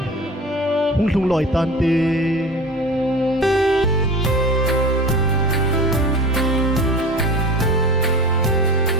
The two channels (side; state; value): both; normal; correlation 0.35